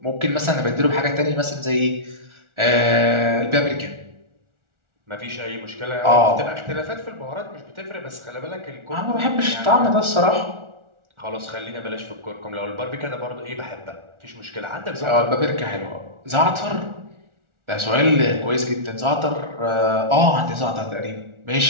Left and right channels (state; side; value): late; left; 1.4 ms